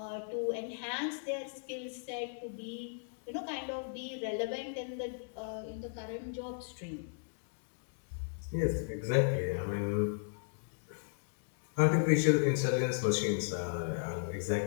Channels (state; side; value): silent; right; digital silence